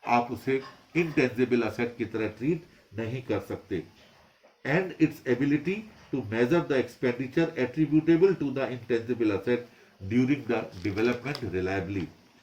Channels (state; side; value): identical; both; correlation 1.00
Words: आप उसे इंटेंजिबल असेट की तरह ट्रीट नहीं कर सकते। And its ability to measure the expenditure attributable to the intangible asset during the development reliably.